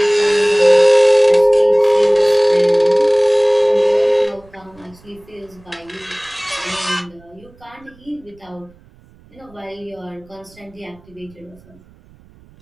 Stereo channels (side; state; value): right; noise; rumble, 28 dB below the sound